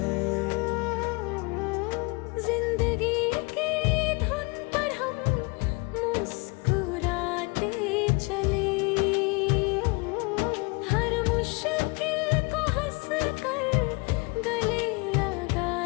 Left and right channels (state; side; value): quieter; right; 28.1 dB